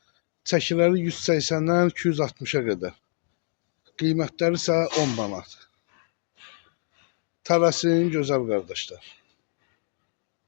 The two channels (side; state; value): right; silent; 59 dB below the other